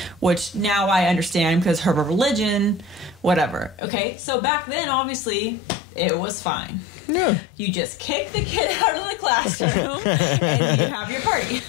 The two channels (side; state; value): right; drops out; at 3.8 s